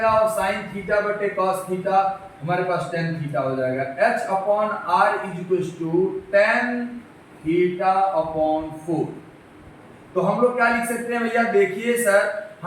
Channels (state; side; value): identical; both; correlation 1.00